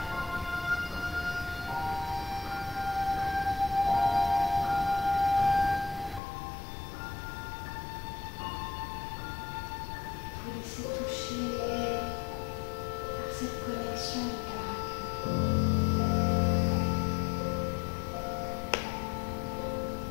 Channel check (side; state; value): right; drops out; at 6.2 s